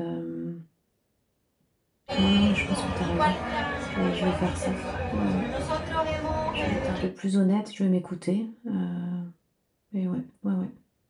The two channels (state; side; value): identical; both; correlation 1.00